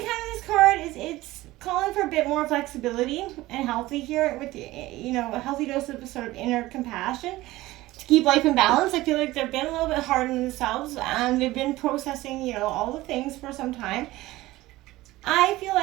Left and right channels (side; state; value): left; quieter; 17.9 dB